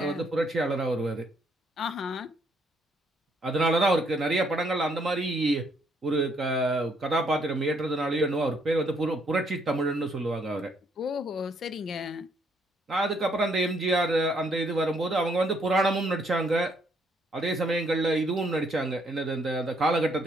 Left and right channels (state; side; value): normal; both; correlation 0.70